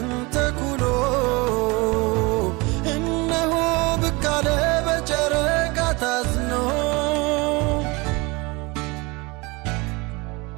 ተኩሎ እነሆ ብቅ አለ በጨረቃ ታዝኖ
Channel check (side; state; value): left; quieter; 25.4 dB